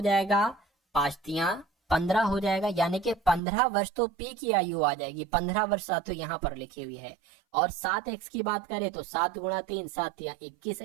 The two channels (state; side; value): drops out; left; at 3.4 s